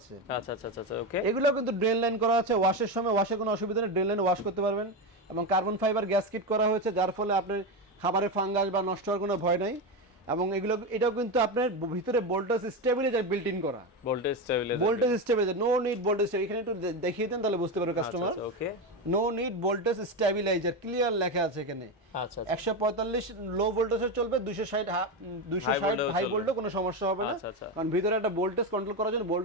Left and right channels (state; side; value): normal; both; correlation 0.14